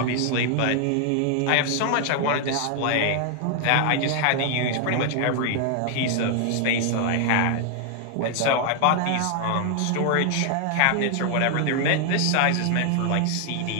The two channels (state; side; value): different; both; correlation 0.00